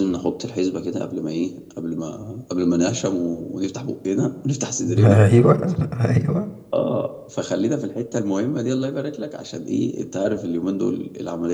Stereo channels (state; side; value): identical; both; correlation 1.00